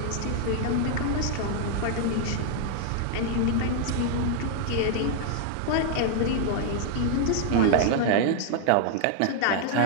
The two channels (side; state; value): both; different; correlation 0.00